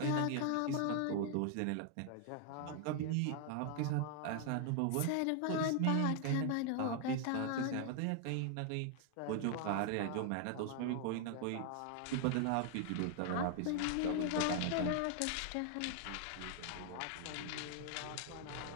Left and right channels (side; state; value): both; different; correlation 0.00